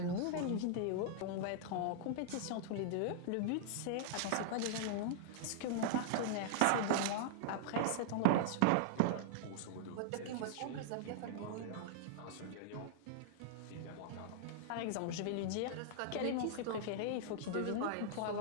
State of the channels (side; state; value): both; different; correlation -0.01